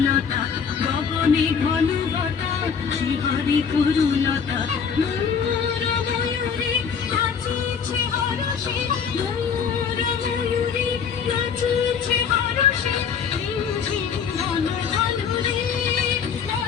গগনে ঘন ঘটা শ্রীহরি তরুলতা ময়ূর ময়ূরী নাচিছে হরষে ময়ূর ময়ূরী নাচিছে হরষে ঝিম ঝিম ঘন ঘন রে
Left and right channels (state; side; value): quieter; right; 6.7 dB